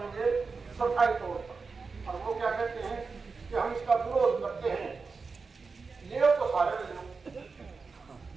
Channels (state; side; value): quieter; left; 4.6 dB